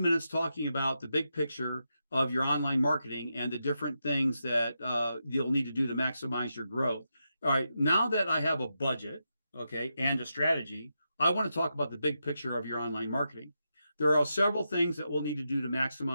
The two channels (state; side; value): inverted; both; correlation -0.86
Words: minutes talking about the big picture of your online marketing and the different things that you'll need to do to maximize your growth. All right, now that I have a budget okay, and a strategy, I want to talk about the big picture of your online marketing. There are several things that we'll need to do to